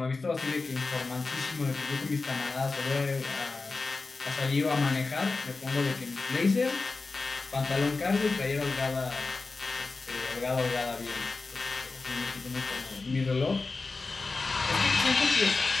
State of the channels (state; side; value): quieter; right; 3.9 dB